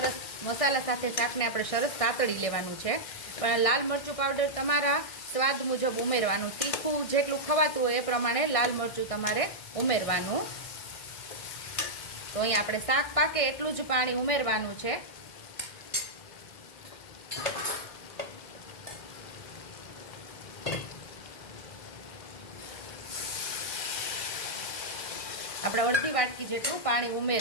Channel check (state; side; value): late; right; 1.6 ms